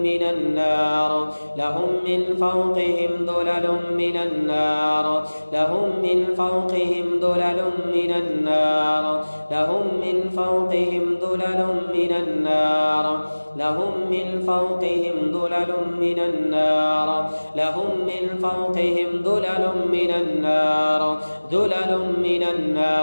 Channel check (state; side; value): inverted; both; correlation -1.00